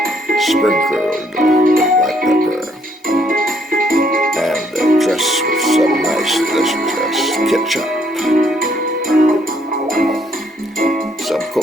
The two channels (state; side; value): normal; both; correlation 0.68